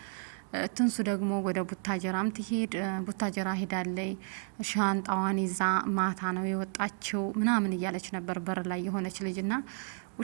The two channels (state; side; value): silent; left; 56 dB below the other